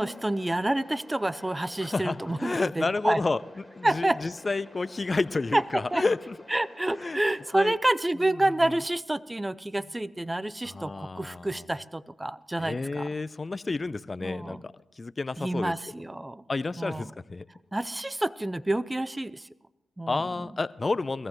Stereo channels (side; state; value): both; normal; correlation 0.97